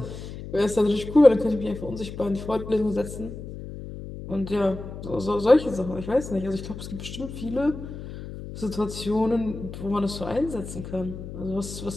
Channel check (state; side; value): noise; left; hum, 10 dB below the sound